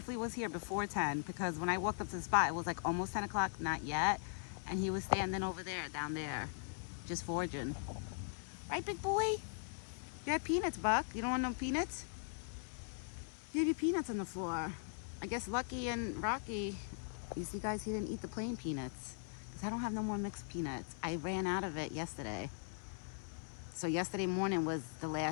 was here before 10, because when I walked up to the spot, it was like almost 10 o'clock, not yet. And he was standing over there, down there, just foraging. Right, big boy? You had peanuts, Buck. You don't want no peanuts? You have your peanuts on the floor. I guess Lucky and Rocky, you see guys, he didn't eat the plain peanuts because I don't have no more mixed peanuts. I ran out of it yesterday. So yesterday morning was the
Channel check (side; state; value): right; silent; 51 dB below the other